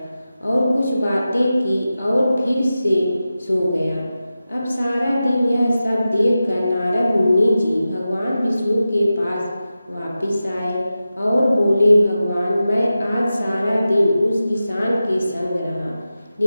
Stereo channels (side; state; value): both; inverted; correlation -0.93